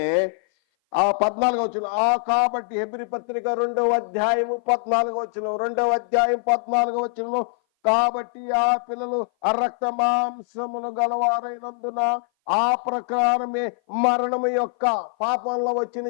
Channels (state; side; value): silent; right; 58 dB below the other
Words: ఆ 14వ వచనం, కాబట్టి హెబ్రీ పత్రిక 2వ అధ్యాయము 14వ వచనం, 2వ అధ్యాయం 14వ వచనంలో, కాబట్టి ఆ పిల్లలు రక్త మాంసమును గలవారైనందున ఆ ప్రకారమే మరణము యొక్క, పాపంలో వచ్చిన